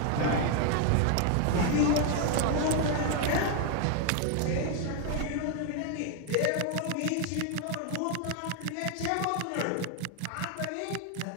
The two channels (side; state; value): both; different; correlation 0.00